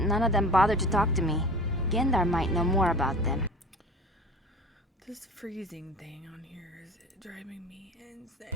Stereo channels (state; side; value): normal; both; correlation 0.40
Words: of them bothered to talk to me. Gendar might know more about them. This freezing thing on here is driving me